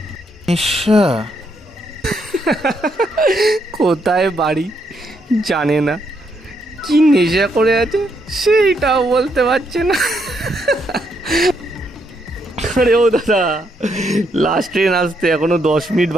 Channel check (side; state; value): both; normal; correlation 0.76